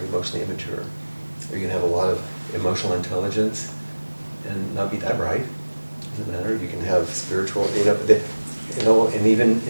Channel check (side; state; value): both; inverted; correlation -1.00